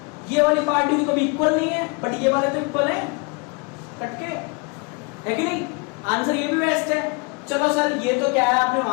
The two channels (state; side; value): quieter; right; 30.7 dB